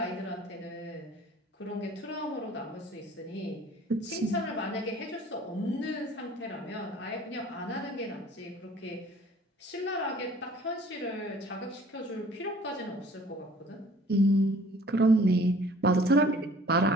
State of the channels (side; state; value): both; normal; correlation 0.52